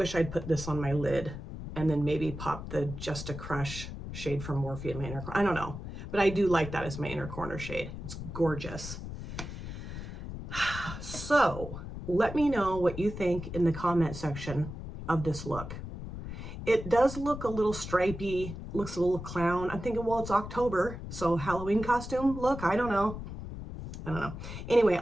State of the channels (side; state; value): left; noise; rumble, 9 dB below the sound